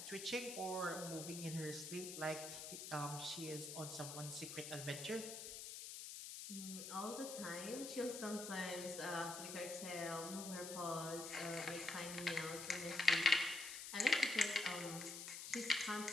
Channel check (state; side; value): noise; left; hiss, 7 dB below the sound